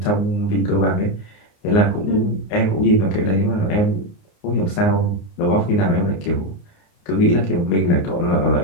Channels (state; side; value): late; right; 29 ms